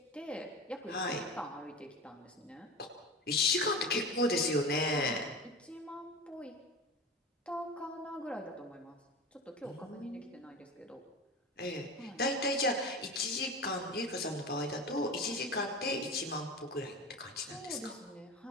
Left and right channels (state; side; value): normal; both; correlation 0.30